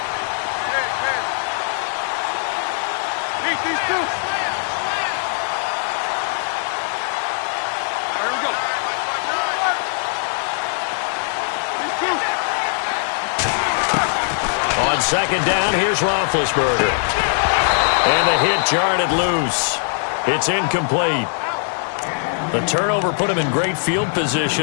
On 2nd down, here's Roethlisberger. And the hit jarred it loose. It's incomplete. The turnover put them in great field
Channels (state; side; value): silent; right; 65 dB below the other